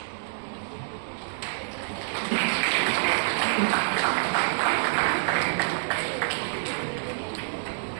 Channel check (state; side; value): silent; left; digital silence